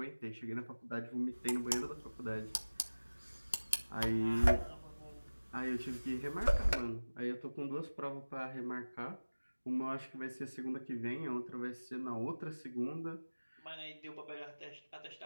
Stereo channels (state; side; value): inverted; both; correlation -1.00